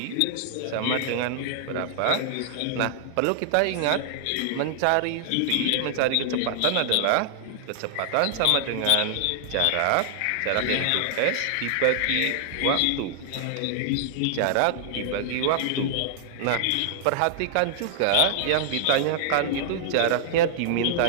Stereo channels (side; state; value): both; different; correlation -0.01